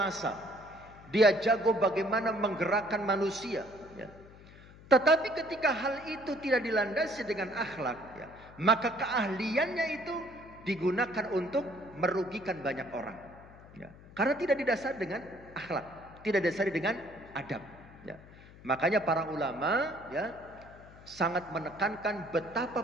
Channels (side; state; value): left; noise; hum, 20 dB below the sound